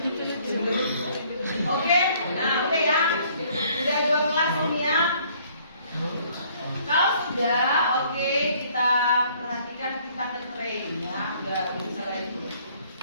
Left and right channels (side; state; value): both; inverted; correlation -0.60